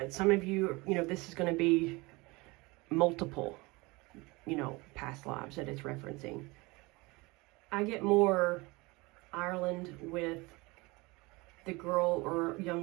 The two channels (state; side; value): quieter; left; 24.3 dB